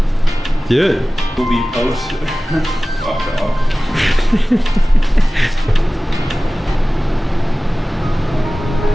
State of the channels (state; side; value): normal; both; correlation 0.97